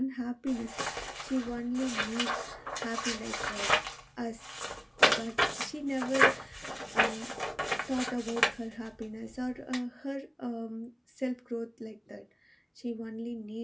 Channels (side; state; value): both; identical; correlation 1.00